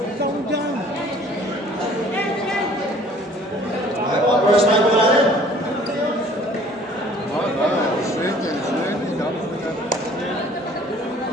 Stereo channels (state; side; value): normal; both; correlation 0.53